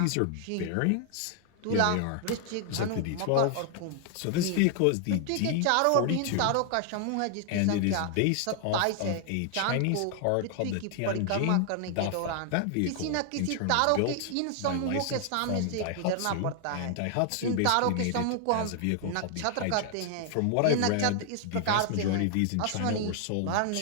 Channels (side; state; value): both; different; correlation 0.00